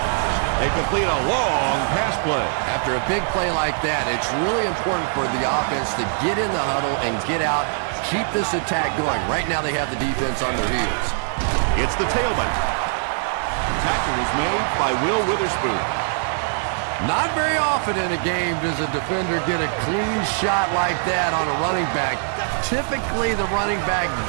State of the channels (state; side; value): silent; left; digital silence